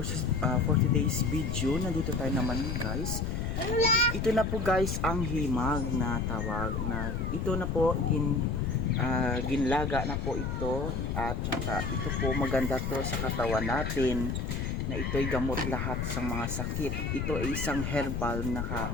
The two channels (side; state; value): left; noise; rumble, 1 dB below the sound